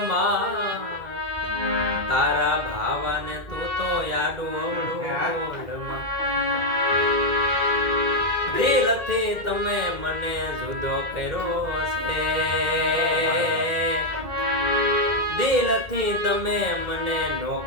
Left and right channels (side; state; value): left; late; 2.1 ms